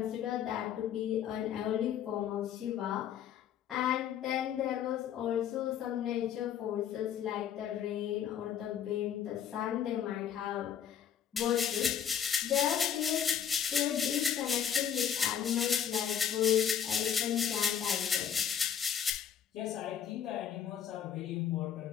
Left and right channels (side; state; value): right; quieter; 8.9 dB